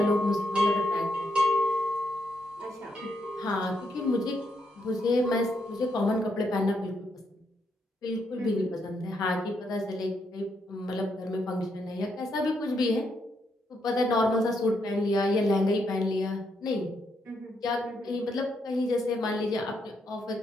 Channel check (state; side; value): normal; both; correlation 0.78